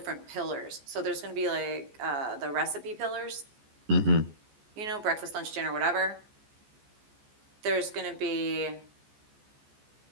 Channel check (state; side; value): late; left; 14 ms